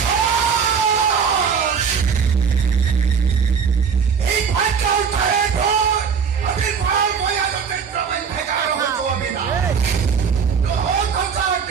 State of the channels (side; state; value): left; quieter; 6.5 dB